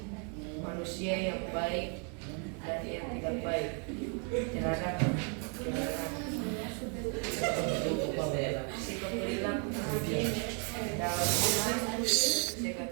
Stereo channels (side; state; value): left; quieter; 39.9 dB